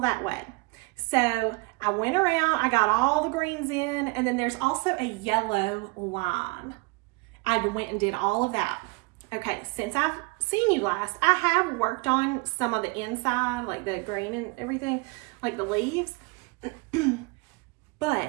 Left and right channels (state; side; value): quieter; left; 27.8 dB